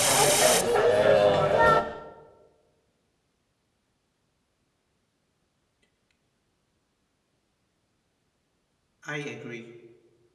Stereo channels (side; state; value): both; identical; correlation 1.00